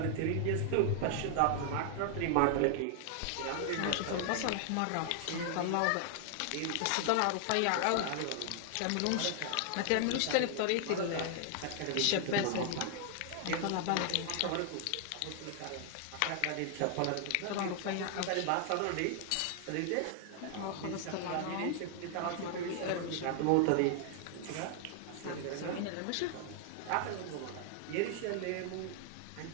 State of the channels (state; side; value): different; both; correlation 0.00